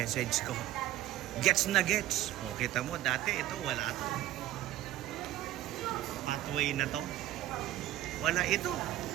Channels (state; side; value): quieter; left; 14.0 dB